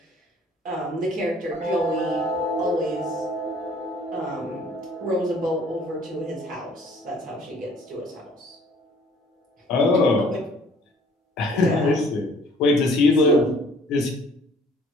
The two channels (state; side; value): normal; both; correlation 0.56